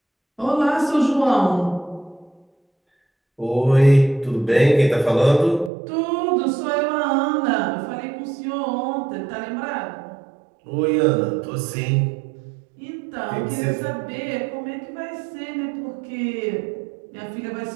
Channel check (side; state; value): left; drops out; at 5.7 s